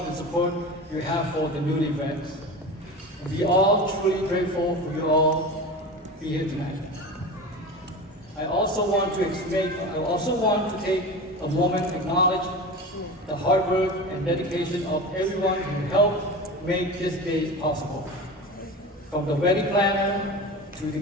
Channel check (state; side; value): normal; both; correlation 0.30